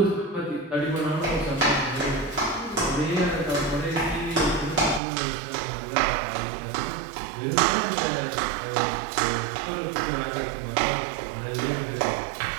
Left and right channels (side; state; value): left; drops out; at 5.0 s